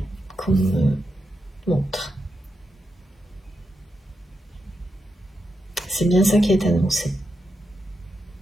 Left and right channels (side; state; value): both; normal; correlation 0.86